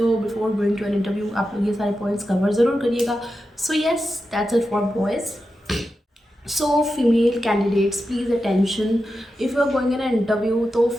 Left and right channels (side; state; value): both; normal; correlation 0.90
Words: हो। Before going to an interview आप लोग ये सारे पॉइंट्स कवर ज़रूर करिएगा। So yes, that's it for boys. So female candidates please attention, if you are going in interview, तो